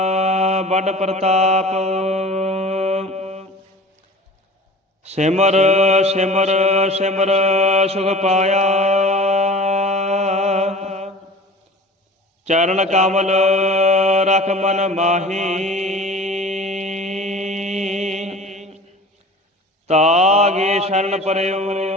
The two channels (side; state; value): both; normal; correlation 0.40